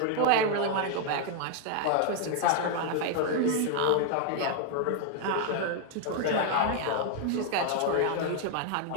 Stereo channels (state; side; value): different; both; correlation 0.00